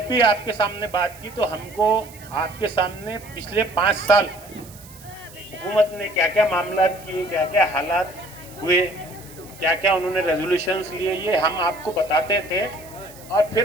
भी आपके सामने बात की तो हमको आपके सामने पिछले 5 साल हुकूमत ने क्या क्या मामला किए, क्या क्या हालात हुए, क्या क्या उन्होंने रेजोल्यूशंस लिए, ये हम आपको बताते थे और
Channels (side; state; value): right; noise; hiss, 20 dB below the sound